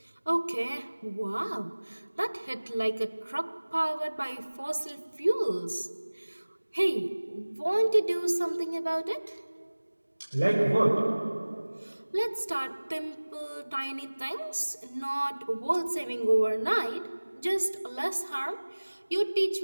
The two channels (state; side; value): inverted; both; correlation -1.00